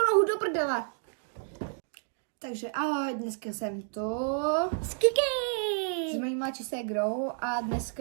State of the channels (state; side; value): silent; left; digital silence